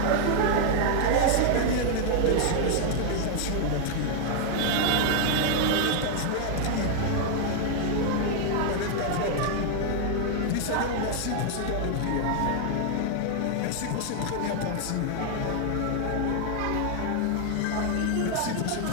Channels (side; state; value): both; different; correlation 0.00